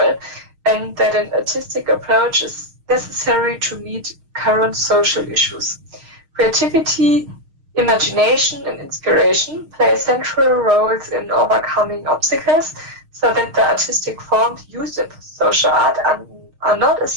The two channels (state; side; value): late; left; 6.5 ms